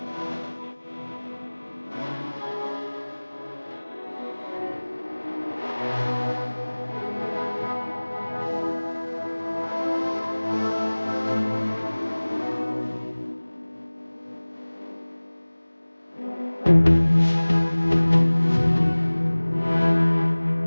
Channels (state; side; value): inverted; both; correlation -1.00